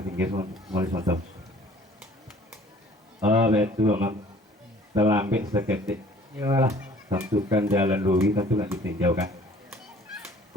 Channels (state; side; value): normal; both; correlation 0.53